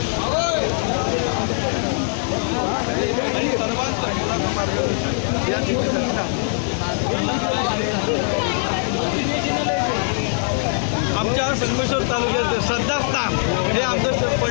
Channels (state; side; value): silent; right; 56 dB below the other